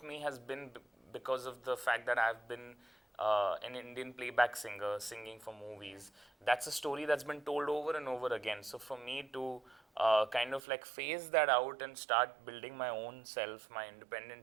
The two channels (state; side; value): drops out; left; at 10.6 s